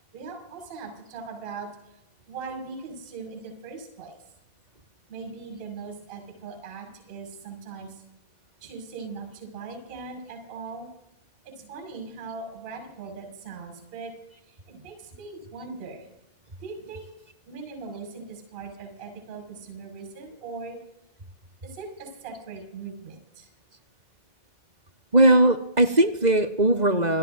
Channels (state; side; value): late; left; 2.0 ms